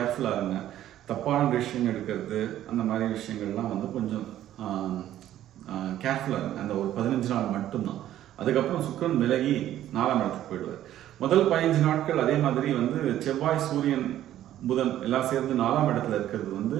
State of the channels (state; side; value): quieter; left; 12.4 dB